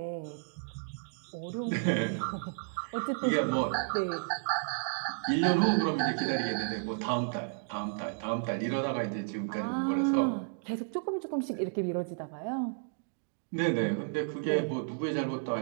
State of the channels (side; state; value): left; silent; digital silence